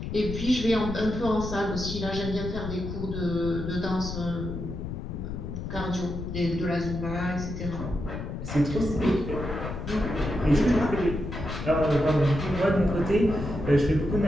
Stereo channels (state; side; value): noise; left; rumble, 6 dB below the sound